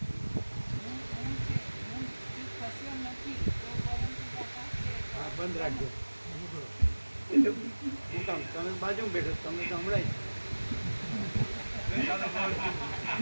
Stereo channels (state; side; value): inverted; both; correlation -1.00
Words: હા, બંધ રાખજો. હું કામ તમે બાજુમાં બેઠો તમને તો હમણાં